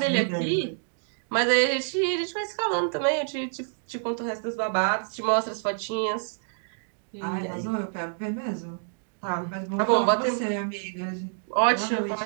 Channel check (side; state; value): left; silent; digital silence